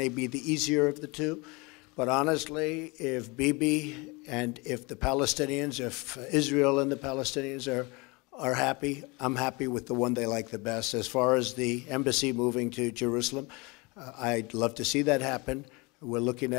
be the easier of the two. But honestly, if Bibi and if the Palestinians, if Israel and the Palestinians are happy, I'm happy with the one they like the best. As far as the embassy moving to Jerusalem, I'd love to see that happen. We're looking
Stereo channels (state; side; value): quieter; right; 26.7 dB